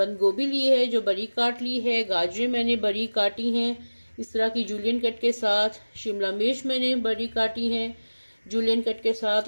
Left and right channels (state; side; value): inverted; both; correlation -1.00